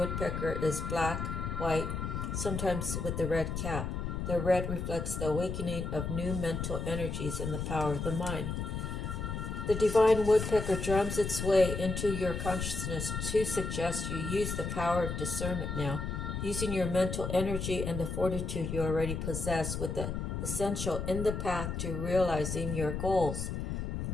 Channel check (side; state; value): left; noise; rumble, 3 dB below the sound